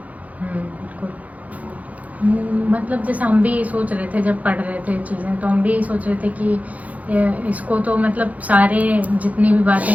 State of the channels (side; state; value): left; late; 0.073 ms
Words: बिल्कुल। मतलब जैसे हम भी सोच रहे थे जब पढ़ रहे थे चीजें, तो हम भी सोच रहे थे कि इसको तो मतलब सारे जितनी भी बातें